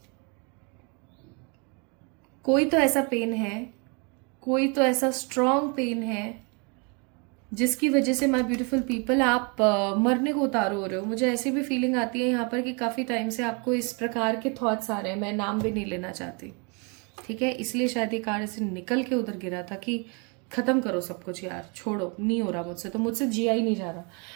कोई तो ऐसा पेन है, कोई तो ऐसा स्ट्रॉन्ग पेन है जिसकी वजह से माय ब्यूटीफुल पीपल आप मरने को उतार हो रहे हो. मुझे ऐसी भी फीलिंग आती है यहाँ पर कि काफ़ी टाइम से आपको इस प्रकार के थॉट्स आ रहे हैं. मैं नाम भी नहीं लेना चाहती, ठीक है, इसलिए शायद ये कार्ड ऐसे निकल के उधर गिरा था कि ख़त्म करो सब कुछ यार, छोड़ो, नहीं हो रहा मुझसे, तो मुझसे जिया ही नहीं जा रहा.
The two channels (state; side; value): quieter; left; 33.2 dB